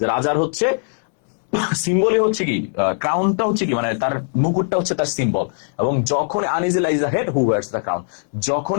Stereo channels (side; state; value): right; silent; 66 dB below the other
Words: রাজার হচ্ছে সিম্বলই হচ্ছে কি, ক্রাউনটা হচ্ছে কি, মানে তার মুকুটটা হচ্ছে তার সিম্বল। এবং যখন uneasy lies the head who wears the crown,